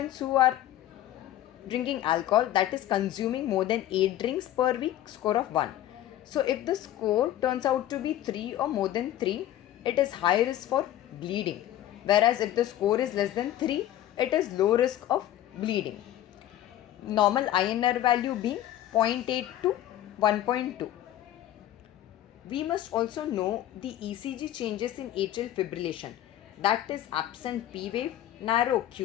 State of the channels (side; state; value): right; quieter; 12.8 dB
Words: who are drinking alcohol, that is consuming more than 8 drinks per week, score of 1. So if the score turns out to be 3 or more than 3, it is high risk for bleeding, whereas if the score is less than 3, it is low risk of bleeding. Normal INR value being 0.8 to 1.2. We must also know the ECG changes in atrial fibrillation, that is absent P wave, narrow